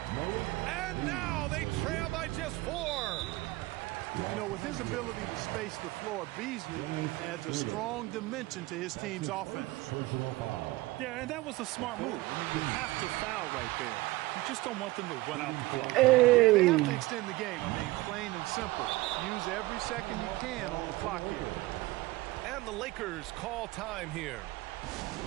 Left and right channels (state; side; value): quieter; left; 19.9 dB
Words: And now they trail by just 4. You know, with his ability to space the floor, Beasley adds a strong dimension to his team's offense. Yeah, and that was a smart move. I mean, you have to foul right there. You just don't want them to run out the clock. Yeah, they have to extend the game. I mean, plain and simple. Use every second you can on the clock here. And the Lakers call time here.